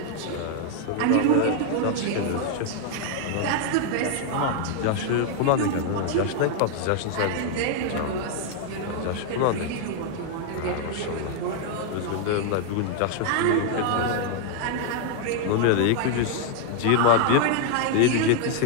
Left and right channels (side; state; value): both; different; correlation 0.00